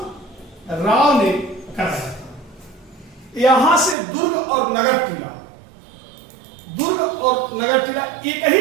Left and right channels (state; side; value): drops out; left; at 4.0 s